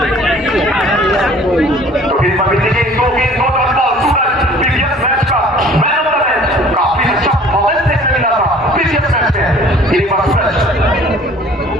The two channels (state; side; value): normal; both; correlation 0.51